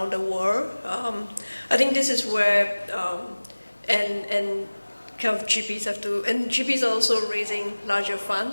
the world. I think this is where and kind of GPs have to, and GPs are also raising larger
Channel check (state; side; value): inverted; both; correlation -1.00